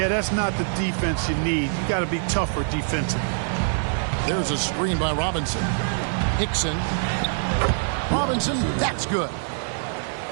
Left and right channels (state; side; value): silent; left; digital silence